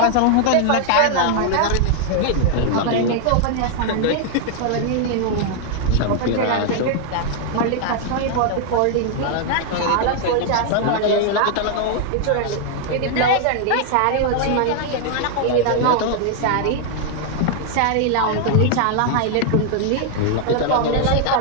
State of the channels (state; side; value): different; both; correlation 0.00